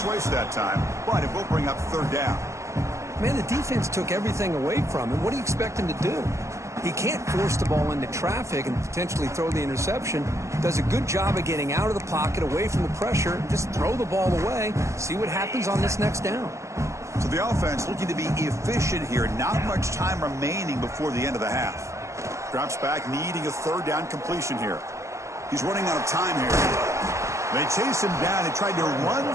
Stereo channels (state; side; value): late; left; 0.14 ms